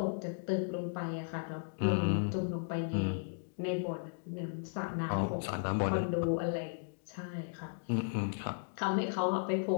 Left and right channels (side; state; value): right; silent; digital silence